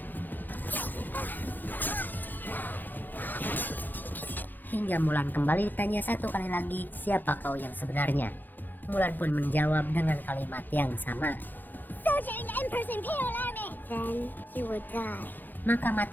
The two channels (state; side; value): late; right; 0.087 ms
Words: Hingga Mulan kembali ditanya satu kali lagi, "Siapa kau yang sebenarnya?" Mulan pun menjawab dengan kalimat yang sama, "Soldier in the Emperor's Imperial Army." "Then you will die." Maka